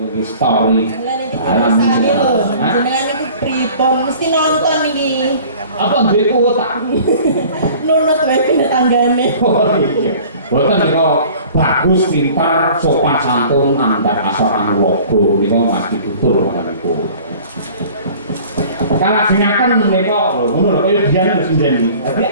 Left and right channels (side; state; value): both; inverted; correlation -0.47